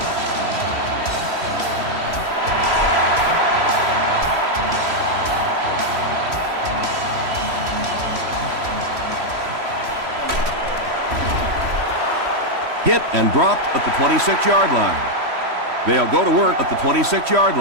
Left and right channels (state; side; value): late; left; 3.0 ms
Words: Hit and dropped at the 26-yard line. They'll go to work at the 26-yard